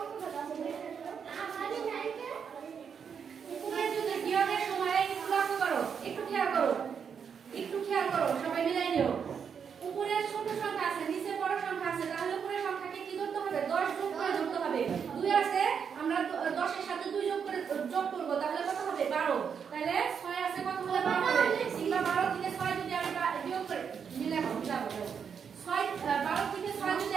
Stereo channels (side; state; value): left; quieter; 6.9 dB